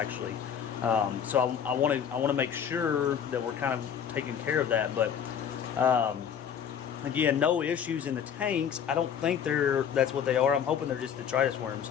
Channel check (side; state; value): right; quieter; 8.1 dB